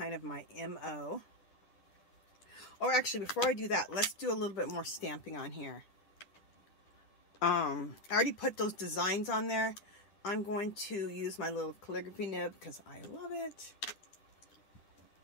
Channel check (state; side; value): late; right; 10 ms